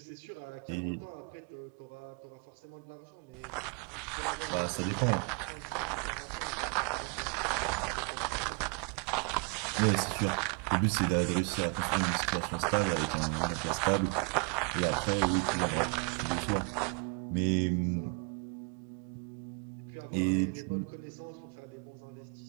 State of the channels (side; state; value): left; quieter; 36.4 dB